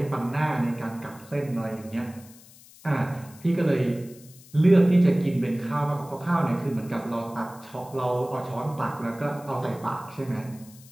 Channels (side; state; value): left; noise; hiss, 22 dB below the sound